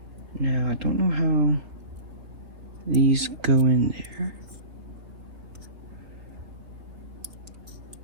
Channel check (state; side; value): late; left; 3.5 ms